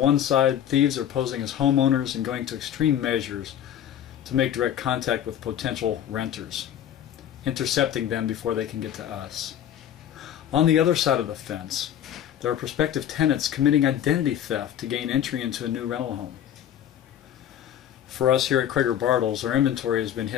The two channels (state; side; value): quieter; right; 10.3 dB